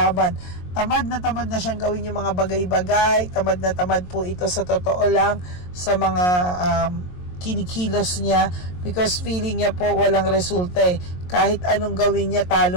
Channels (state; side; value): late; right; 22 ms